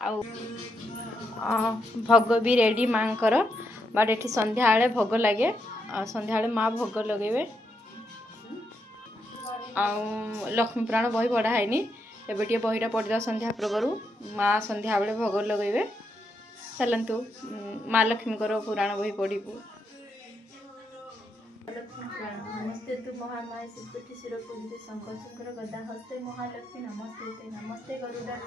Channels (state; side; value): normal; both; correlation 0.81